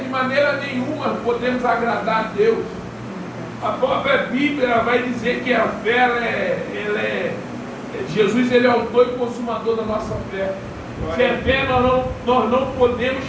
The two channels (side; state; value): both; identical; correlation 1.00